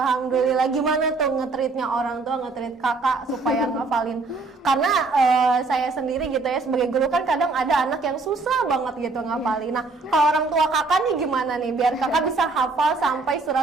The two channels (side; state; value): left; quieter; 3.8 dB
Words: Gimana tuh nge-treatnya orang tua, nge-treat kakak supaya ngafalin? Karena saya sendiri gitu ya sebagai guru kan kadang ada anak yang susah banget gitu ngafalin. Nah, kalau orang tua kakak nih gimana nih biar kakak bisa hafal sampai